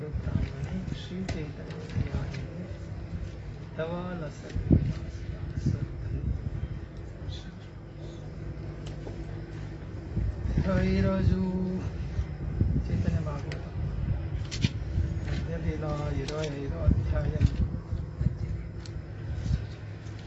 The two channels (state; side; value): identical; both; correlation 1.00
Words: श्री चैतन्य ఈరోజు చైతన్య భాగవతం మధ్యలీల 25వ అధ్యాయం.